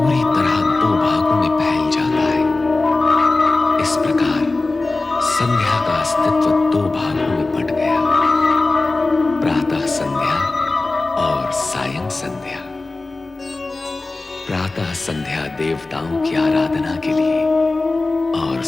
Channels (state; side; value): quieter; right; 3.3 dB